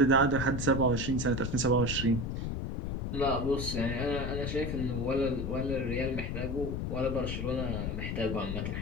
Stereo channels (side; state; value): left; noise; rumble, 3 dB below the sound